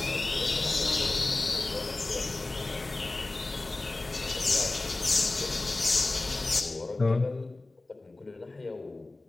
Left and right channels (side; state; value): right; quieter; 3.1 dB